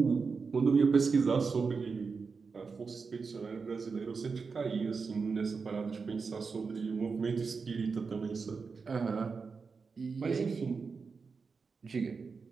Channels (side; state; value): left; quieter; 5.0 dB